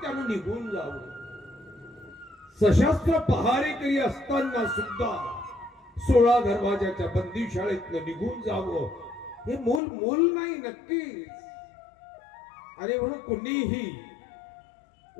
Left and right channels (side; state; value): right; drops out; at 9.8 s